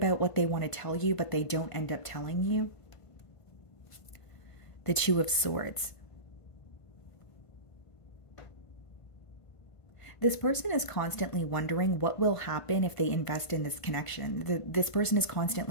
what they want to tell you, but they don't end up telling you. The Two of Swords. This person is constantly wondering what will happen if they invest in this connection. This person is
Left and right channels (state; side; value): late; right; 1.5 ms